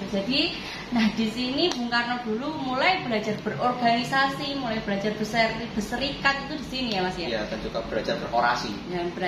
itu. Jadi, nah di sini Bung Karno dulu mulai belajar berorganisasi, mulai belajar berserikat itu di sini ya Mas ya. Iya, dan juga belajar berorasi. Dan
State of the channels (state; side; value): identical; both; correlation 1.00